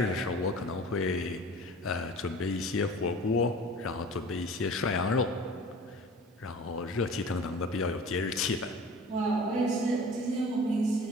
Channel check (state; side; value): normal; both; correlation 0.42